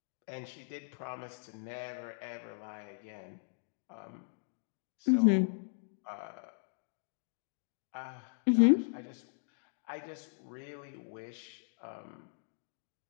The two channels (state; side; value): silent; right; digital silence